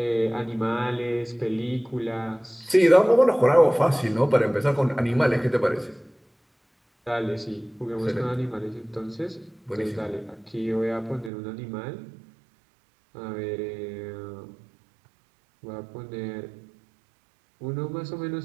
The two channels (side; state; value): left; drops out; at 11.3 s